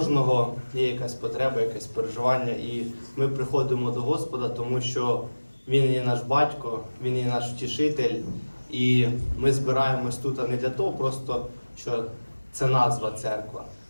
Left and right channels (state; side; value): inverted; both; correlation -1.00